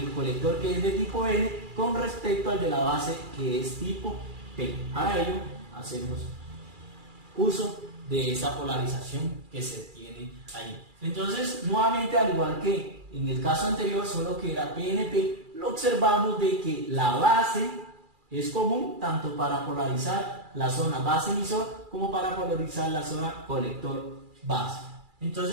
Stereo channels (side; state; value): left; late; 2.3 ms